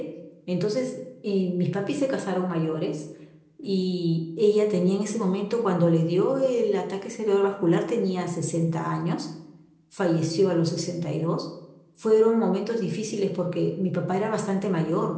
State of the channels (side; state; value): both; identical; correlation 1.00